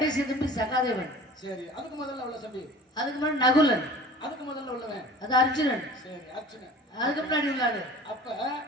தம்பி சகாதேவன். சரி, அதுக்கு முதல்ல உள்ள தம்பி? அதுக்கு முன்னாடி நகுலன். அதுக்கு முதல்ல உள்ளவன்? அது அர்ஜுனன். சரி, அர்ஜுனன். அதுக்கு முன்னாடி உள்ளாரு அப்ப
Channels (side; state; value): both; normal; correlation 0.43